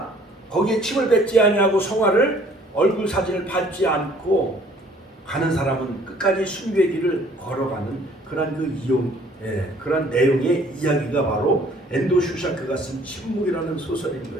거기에 침을 뱉지 아니하고 성화를, 얼굴 사진을 밟지 않고 가는 사람은 끝까지 순교의 길을 걸어가는 그런 그런 내용의 이야기가 바로 엔도 슈샤크가 쓴 침묵이라는 소설인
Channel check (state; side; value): normal; both; correlation 0.57